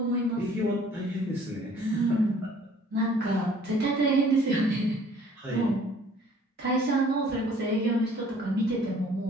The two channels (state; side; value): normal; both; correlation 0.55